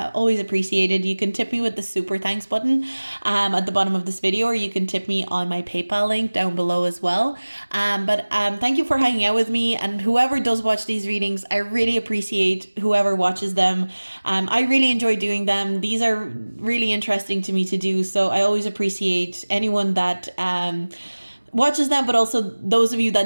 appreciated. You can tip me with the super thanks button at the bottom of this video, or you can tip me on my PayPal link down below as well. But thank you for hanging out with me. And whoever does watch these readings, I really appreciate whoever watches them. I really enjoy doing them. These are really interesting to me to do, so I always appreciate anyone that watches them, but also those of you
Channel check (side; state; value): both; inverted; correlation -1.00